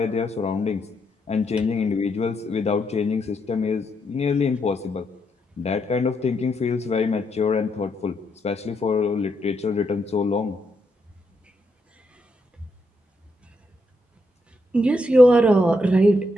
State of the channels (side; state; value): both; normal; correlation 0.79